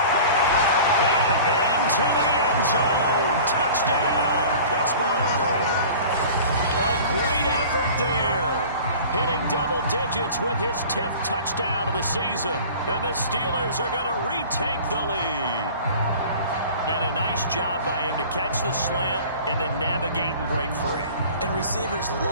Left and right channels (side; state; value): both; inverted; correlation -0.42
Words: And into the end zone. Touchdown, Pittsburgh. A great effort there. Hitting double digits with his 10th touchdown of the season. And the Steelers are going to retake the lead. And a nice job by him to catch the slant and then navigate and break free. And receivers